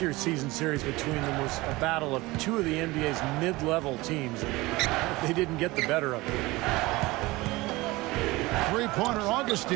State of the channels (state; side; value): quieter; left; 21.0 dB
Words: year's season series between them was a battle of two of the NBA's mid-level teams. They didn't get the better of it. Three-pointer